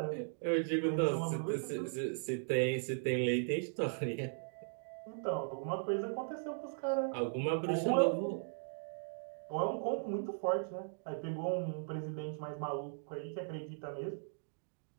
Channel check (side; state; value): left; silent; digital silence